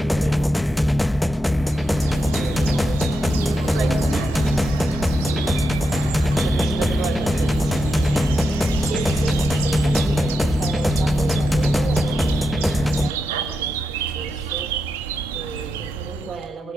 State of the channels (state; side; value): normal; both; correlation 0.86